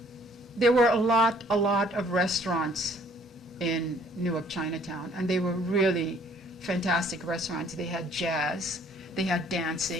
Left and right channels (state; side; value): normal; both; correlation 0.59